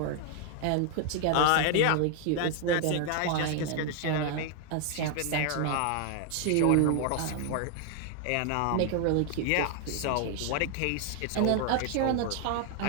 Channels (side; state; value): both; different; correlation 0.00